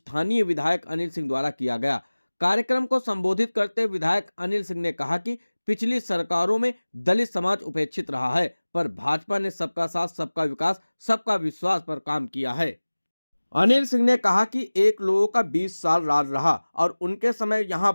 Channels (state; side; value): inverted; both; correlation -1.00